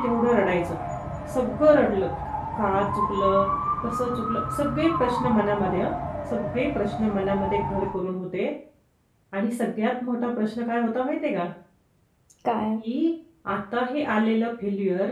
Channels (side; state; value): both; identical; correlation 1.00